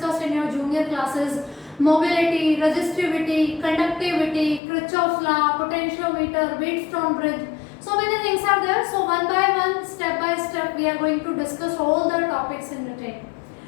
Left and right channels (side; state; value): right; drops out; at 4.6 s